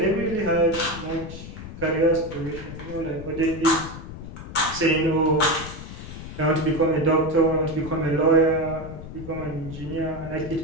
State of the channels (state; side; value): noise; left; rumble, 11 dB below the sound